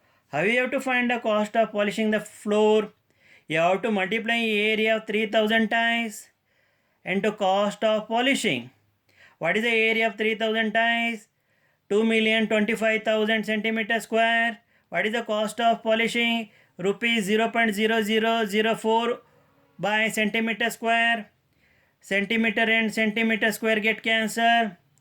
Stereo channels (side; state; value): both; identical; correlation 1.00